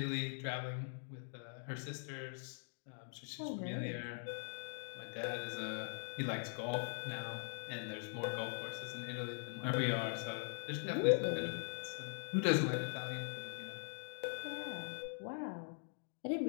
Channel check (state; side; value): silent; right; digital silence